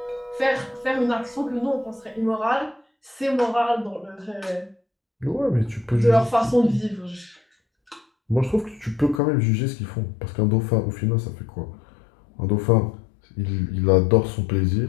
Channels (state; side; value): drops out; right; at 9.2 s